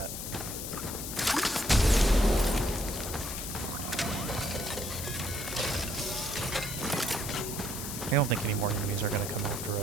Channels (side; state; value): left; noise; hiss, 6 dB below the sound